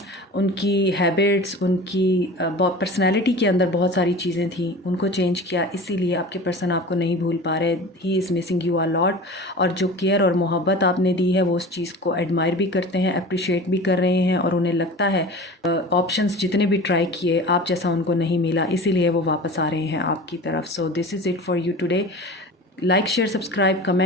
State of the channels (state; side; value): normal; both; correlation 0.36